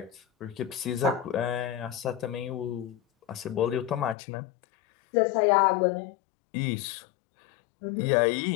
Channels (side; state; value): right; drops out; at 4.2 s